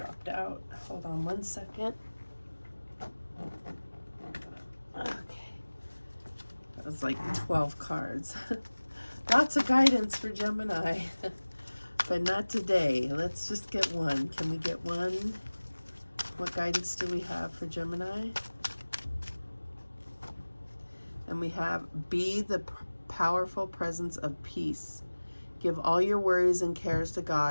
out. Hold on one second. Okay. That was like 12 cards. Lots of guidance for Gemini. but not today. Let's just get one. Can we get one? What guidance do we have for Gemini? And we have, be the powerful presence of peace. Give all your worries and cares to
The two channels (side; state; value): both; inverted; correlation -1.00